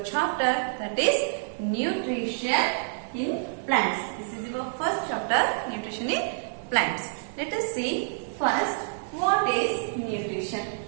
chapter, that is nutrition in plants. This is your first chapter, nutrition in plants. Let us see first what is nutrition.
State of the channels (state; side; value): silent; left; digital silence